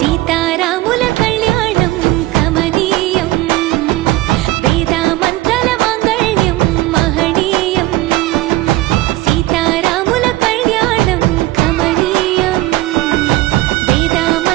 కళ్యాణం కమనీయం వేదామంతల మాంగళ్యం మహనీయం సీతారాముల కళ్యాణం కమనీయం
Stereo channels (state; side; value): quieter; left; 17.5 dB